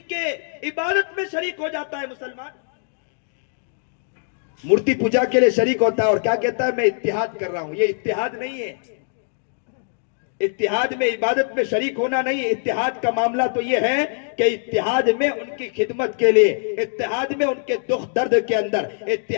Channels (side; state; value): right; silent; digital silence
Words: کے عبادت میں شریک ہو جاتا ہے مسلمان، مورتی پوجا کے لیے شریک ہوتا ہے اور کیا کہتا ہے میں اتحاد کر رہا ہوں۔ یہ اتحاد نہیں ہے، اتحاد میں عبادت میں شریک ہونا نہیں، اتحاد کا معاملہ تو یہ ہے کہ اتحاد میں ان کی خدمت کے لیے، اتحاد میں ان کے دکھ درد کے اندر،